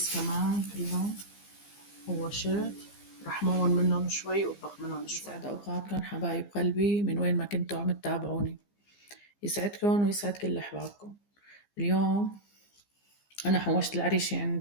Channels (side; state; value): right; late; 15 ms